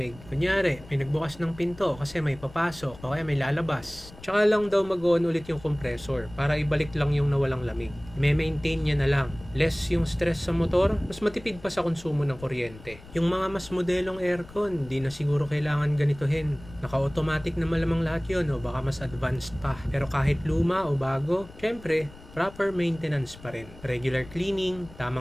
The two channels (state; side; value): noise; left; rumble, 19 dB below the sound